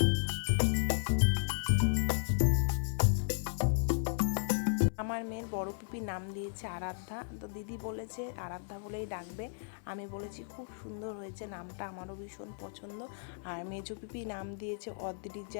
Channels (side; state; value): right; silent; 54 dB below the other